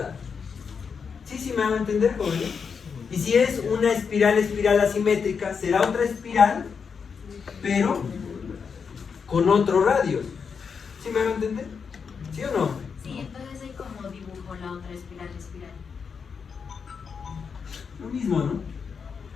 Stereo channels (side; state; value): right; quieter; 6.0 dB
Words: ¿Sí me van a entender, jóvenes? Y si es una espiral, espiral asimétrica, será otra espiral, pero con otros radios. ¿Sí me van a entender? ¿Sí o no? Sí, entonces ahí como dibujo la otra espiral, espiral. Lo mismo, ¿no?